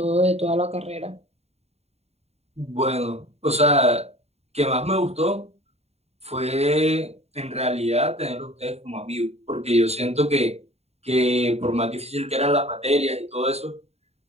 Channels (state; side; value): late; left; 0.30 ms